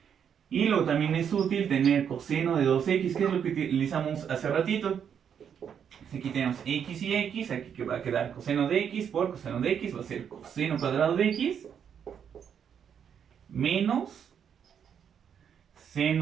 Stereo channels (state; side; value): quieter; left; 8.0 dB